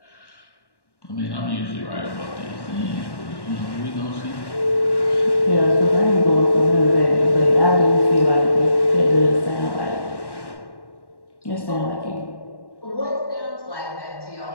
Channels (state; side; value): late; right; 1.1 ms